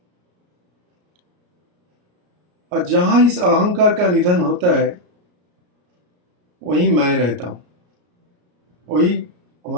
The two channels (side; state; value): left; late; 33 ms